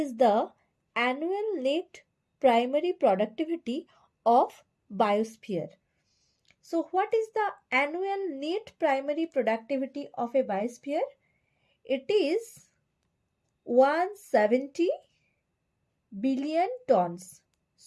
the annual net primary productivity of biosphere? So what is the annual net primary productivity of a biosphere? It is 170 billion tons.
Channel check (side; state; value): both; identical; correlation 1.00